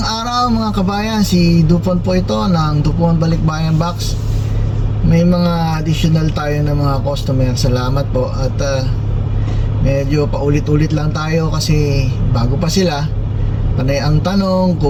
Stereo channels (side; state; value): both; identical; correlation 1.00